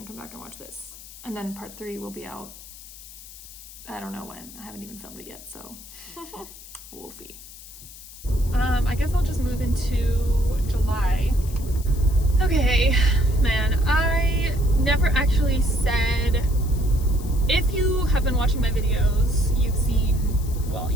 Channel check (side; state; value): left; noise; hiss, 17 dB below the sound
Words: back and watch this. And then part 3 will be out, I don't know when. I haven't even filmed it yet, so we'll see. I guess I'll just move into July. Okay, man, I never actually said, if you have been watching my videos, you've seen, well,